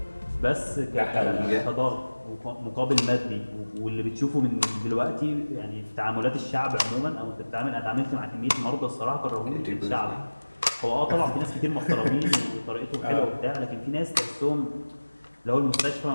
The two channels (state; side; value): inverted; both; correlation -1.00